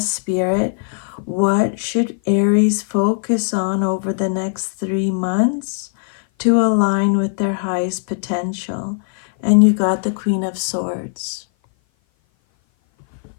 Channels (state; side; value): silent; right; 56 dB below the other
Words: Spirit, what should Aries focus on over the next 3 months to align with their highest potential? And you got the Queen of Swords.